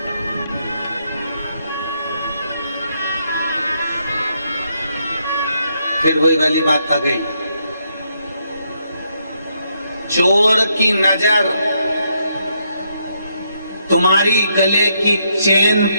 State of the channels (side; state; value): both; inverted; correlation -0.77